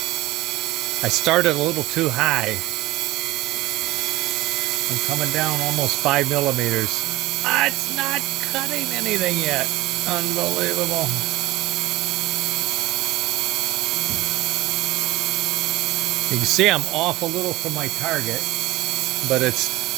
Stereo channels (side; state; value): left; quieter; 18.3 dB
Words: I started a little too high. I'm coming down almost 5 millimeters. It's not cutting anything yet. Unbelievable. You can see I'm off a little from my target, but it's